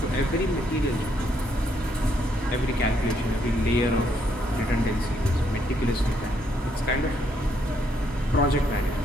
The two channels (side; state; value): both; normal; correlation 0.73